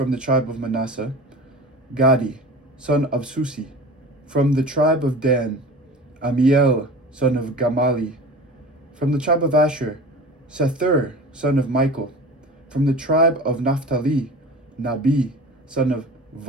the tribe of Manasseh, Gadi son of Susi. From the tribe of Dan, Amiel son of Gamali. From the tribe of Asher, Sethur son of Michael. From the tribe of Naphtali, Nabi son of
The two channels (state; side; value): normal; both; correlation 0.36